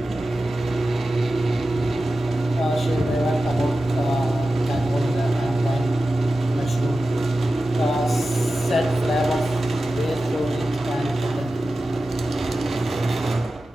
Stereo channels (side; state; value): both; normal; correlation 0.93